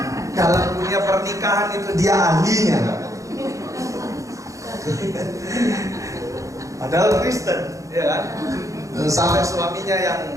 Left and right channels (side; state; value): left; late; 0.15 ms